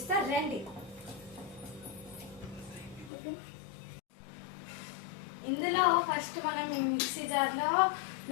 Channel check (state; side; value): drops out; right; at 3.1 s